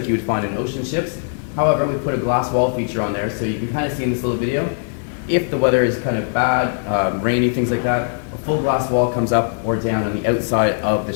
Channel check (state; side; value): silent; right; digital silence